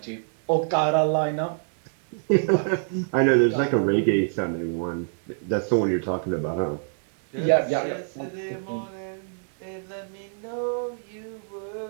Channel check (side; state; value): left; silent; 61 dB below the other